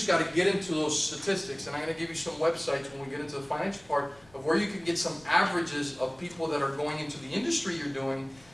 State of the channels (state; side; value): noise; left; rumble, 27 dB below the sound